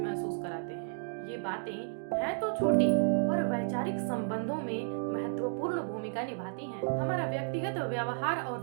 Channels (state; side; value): silent; left; digital silence